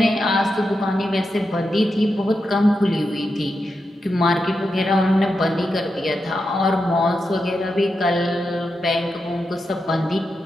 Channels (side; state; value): both; normal; correlation 0.87